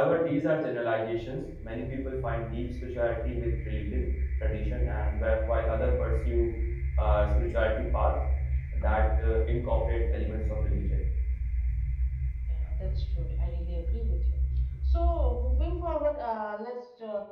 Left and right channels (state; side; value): identical; both; correlation 1.00